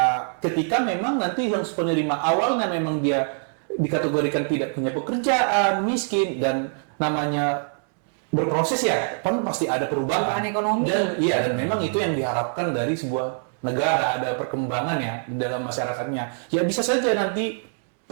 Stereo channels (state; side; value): silent; left; 62 dB below the other